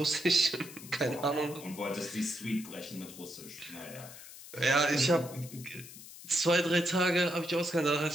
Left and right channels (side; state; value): left; noise; hiss, 16 dB below the sound